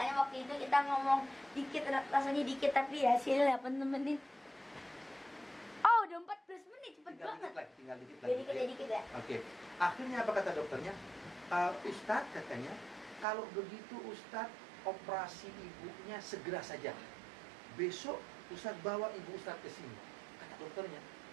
waktu itu kita ngomong dikit, rasanya dikit, tapi hasilnya 8 menit. Oh, udah 14 menit, cepet banget. Tinggal dikit lagi. Dikit ya. Oke. Akhirnya apa kata dokternya? Ustadz katanya, kalau begitu Ustadz operasi ibunya segera saja. Besok Ustadz bawa ibu Ustadz ke sini. Kata dokternya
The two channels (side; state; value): left; drops out; at 13.2 s